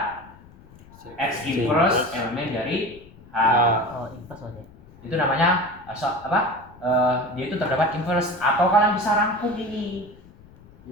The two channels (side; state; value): left; noise; rumble, 23 dB below the sound